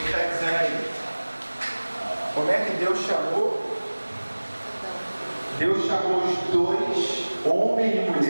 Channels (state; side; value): inverted; both; correlation -1.00